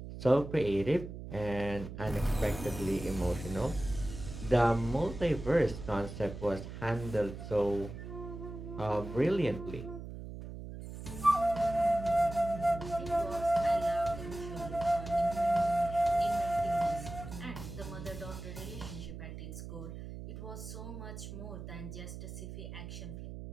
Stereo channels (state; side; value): noise; right; hum, 10 dB below the sound